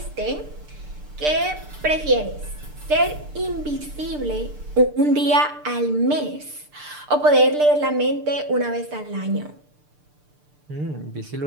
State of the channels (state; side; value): late; left; 6.7 ms